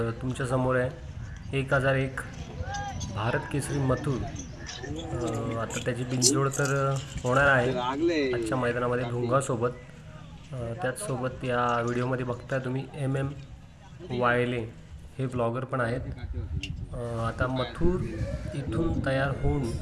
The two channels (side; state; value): both; identical; correlation 1.00